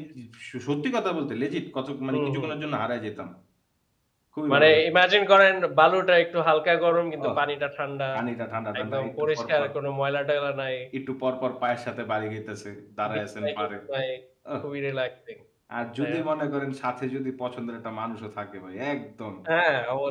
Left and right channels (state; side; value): identical; both; correlation 1.00